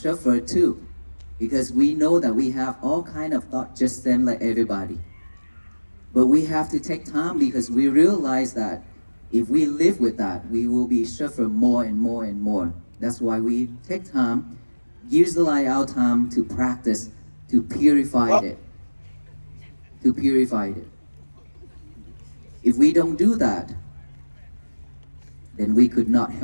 too. Because we know that we have all kind of thought just same like everybody. But we have to take time because we realize that if we live with that, we will be suffer more and more and more. That's why we take time, utilize our time to practice, to purify it. To purify it. If we don't do that, then we could not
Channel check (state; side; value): inverted; both; correlation -1.00